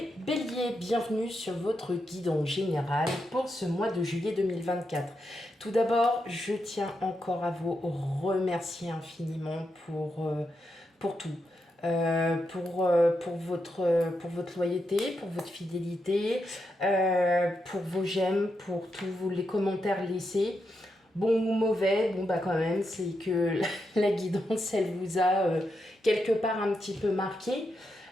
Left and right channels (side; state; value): both; normal; correlation 0.84